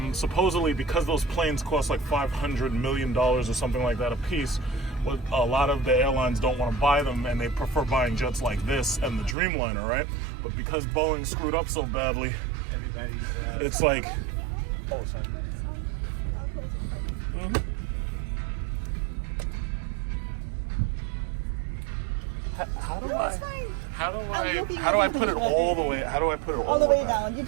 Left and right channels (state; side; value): drops out; left; at 9.3 s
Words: supposedly, because those planes cost like $500 million or something like that a piece, what a lot of the airlines don't want to buy them, and they prefer buying jets like this and the Dreamliner, right? But because Boeing screwed up so badly, Everybody's. it's like, oh, sorry. How do I put it all the way? How do I put it all the way down? You